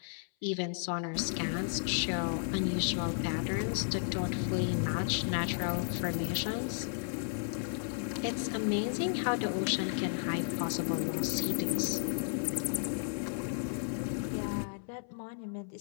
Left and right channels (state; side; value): silent; right; 55 dB below the other